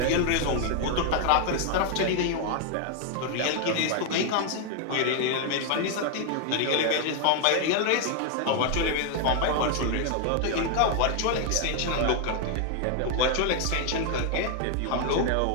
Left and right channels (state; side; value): different; both; correlation 0.00